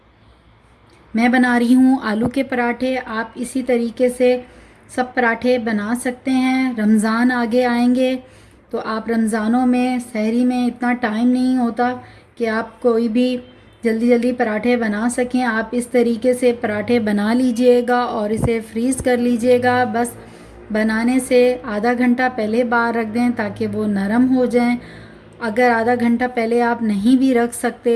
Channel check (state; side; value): identical; both; correlation 1.00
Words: मैं बना रही हूं आलू के पराठे। आप इसी तरीके से सब पराठे बना सकते हैं। रमज़ान आगे आएंगे तो आप रमज़ानों में सहरी में इतना टाइम नहीं होता कि आप कोई भी जल्दी जल्दी पराठे बना सकें। आप इस तरीके से पराठे बना लीजिएगा और इसे फ्रीज़ कर लीजिएगा। बस बनाने से आधा घंटा पहले बाहर रख दें ताकि वो नरम हो जाएं। अगर आधा घंटा पहले आप नहीं भी रख